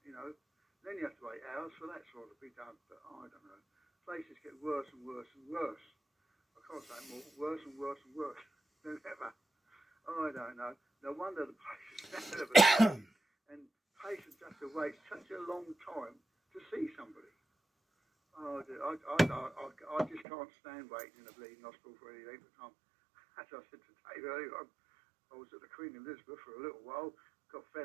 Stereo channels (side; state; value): left; drops out; at 20.2 s